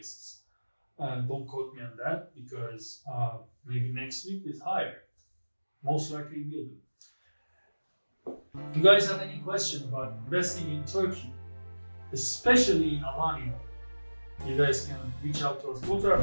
Don't quote me on that, because maybe next week is higher. Most likely will be. If you guys have any question about investing in Turkey, especially in Alanya, you guys can reach out to us. Go to our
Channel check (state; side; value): inverted; both; correlation -1.00